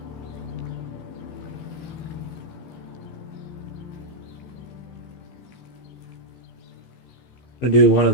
I'm gonna do one of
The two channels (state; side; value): late; right; 15 ms